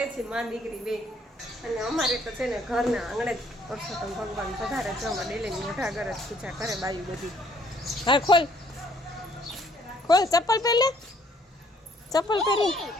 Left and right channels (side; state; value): both; normal; correlation 0.64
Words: છીએ, મા દીકરી બે. અને અમારે તો છે ને ઘરના આંગણે જ પુરુષોત્તમ ભગવાન પધારે છે. અમે ડેલી મોઢા ઘર જ પૂજા કરે બાયું બધી. હા, ખોલ ખોલ, ચપ્પલ પહેલે, ચપ્પલ પહેરી.